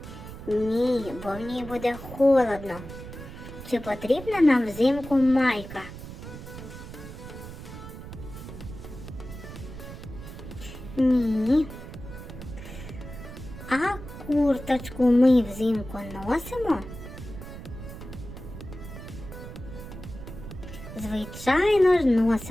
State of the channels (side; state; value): right; noise; rumble, 12 dB below the sound